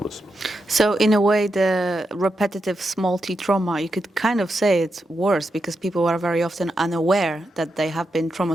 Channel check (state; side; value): normal; both; correlation 0.86